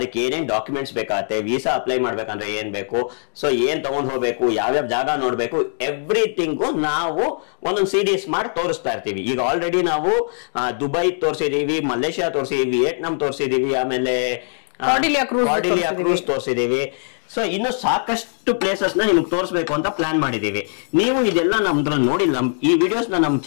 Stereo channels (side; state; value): right; silent; digital silence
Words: ಏನೇನ್ ಡಾಕ್ಯುಮೆಂಟ್ಸ್ ಬೇಕಾಗತ್ತೆ, ವೀಸಾ ಅಪ್ಲೈ ಮಾಡ್ಬೇಕಂದ್ರೆ ಏನ್ ಬೇಕು, ಸೊ ಏನ್ ತಗೊಂಡ್ ಹೋಗ್ಬೇಕು, ಯಾವ್ಯಾವ ಜಾಗ ನೋಡ್ಬೇಕು, ಎವ್ರಿಥಿಂಗು ನಾವು ಒಂದೊಂದು ಸೀರೀಸ್ ಮಾಡಿ ತೋರಿಸ್ತಾ ಇರ್ತೀವಿ. ಈಗ ಆಲ್ರೆಡಿ ನಾವು ದುಬೈ ತೋರಿಸಿದೀವಿ, ಮಲೇಷ್ಯಾ ತೋರಿಸಿದೀವಿ, ವಿಯೆಟ್ನಾಂ ತೋರಿಸಿದೀವಿ, ಆಮೇಲೆ ಕಾರ್ಡಿಲಿಯಾ ಕ್ರೂಸ್ ತೋರಿಸಿದೀವಿ. ಸೊ ಇನ್ನು ಸಾಕಷ್ಟು ಪ್ಲೇಸಸ್ ನ ನಿಮ್ಗೆ ತೋರಿಸ್ಬೇಕು ಅಂತ ಪ್ಲಾನ್ ಮಾಡಿದೀವಿ. ನೀವು ಇದೆಲ್ಲ ನಮ್ದ್ರಲ್ಲಿ ನೋಡಿಲ್ಲ, ಈ ವಿಡಿಯೋಸ್ ನಮ್